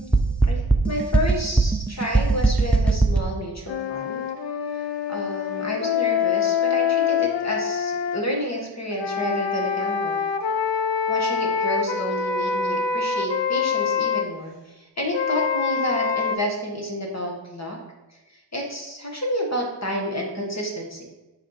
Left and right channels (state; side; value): normal; both; correlation 0.25